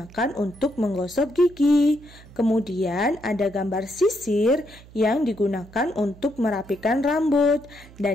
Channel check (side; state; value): right; noise; hum, 21 dB below the sound